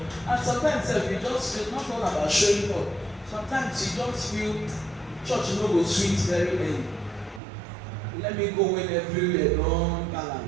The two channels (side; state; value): left; drops out; at 7.4 s